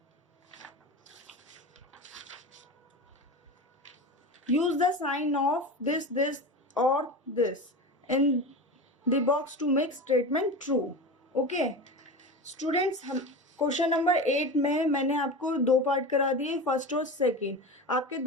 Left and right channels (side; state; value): both; normal; correlation 0.26